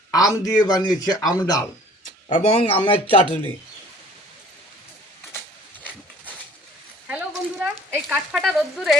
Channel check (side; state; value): both; normal; correlation 0.52